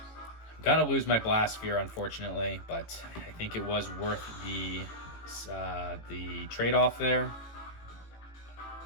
gonna lose my Blast Sphere, unfortunately, but I think it was worth the trade-off there.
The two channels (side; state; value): right; late; 18 ms